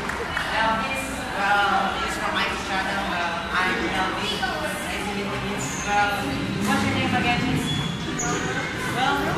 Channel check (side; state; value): both; identical; correlation 1.00